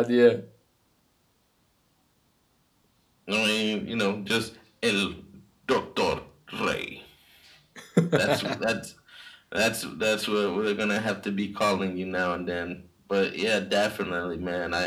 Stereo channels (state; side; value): identical; both; correlation 1.00